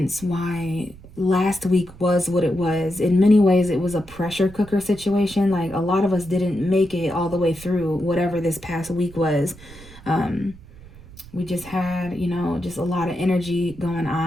why last week was what it was. In many ways, it was a pressure cooker situation. Like, a lot of us didn't make it all the way through whatever this past week was. We just had, just a lot of energy going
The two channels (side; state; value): right; noise; rumble, 20 dB below the sound